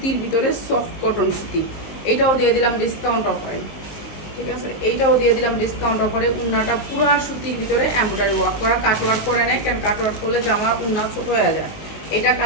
ভিতরে সফট কটন সুতি। এইটাও দিয়ে দিলাম ডিসকাউন্ট অফারে। ঠিক আছে, এইটাও দিয়ে দিলাম ডিসকাউন্ট অফারে। উন্নাটা পুরা সুতির ভিতরে এমব্রয়ডারি ওয়ার্ক করা, কাটওয়ার্ক করে নেয়, কেন কাটওয়ার্ক করলে জামা উন্না ছোট হয়ে যায়। এটা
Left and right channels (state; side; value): late; right; 19 ms